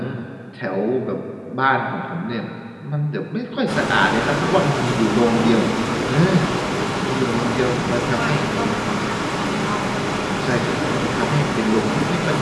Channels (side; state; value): both; identical; correlation 1.00